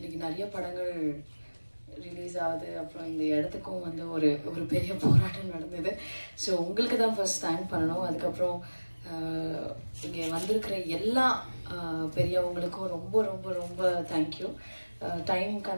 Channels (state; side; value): inverted; both; correlation -1.00